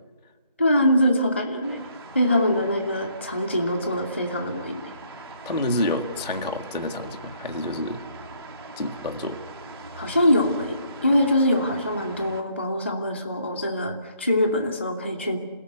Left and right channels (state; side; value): inverted; both; correlation -0.66